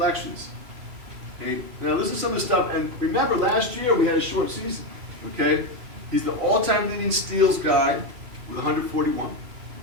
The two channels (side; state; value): left; late; 2.8 ms